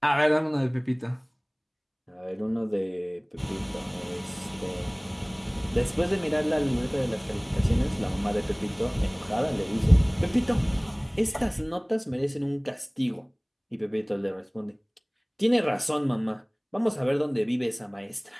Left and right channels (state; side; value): identical; both; correlation 1.00